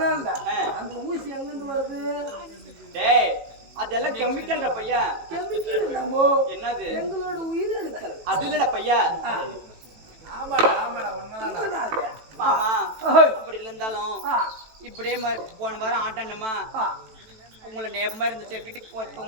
அந்த ஊசி எங்கிருந்து வருது? டேய் அதெல்லாம் கெமிக்கல்டா பையா. கெமிக்கல் இல்லமோ. என்னது? எங்களோட உயிரணுக்கள். அது இல்லடா பையா. ஆமாடா ஆமாடா உண்மைதான். மாமா அப்படி இருந்தாலும் இப்படியே போன வாரம் ஆட்டாண்டமா உங்களை நேபமா இருந்துச்சு. வீட்டுக்கு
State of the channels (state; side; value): late; left; 18 ms